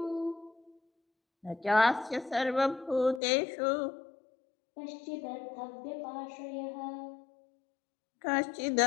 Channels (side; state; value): right; drops out; at 3.2 s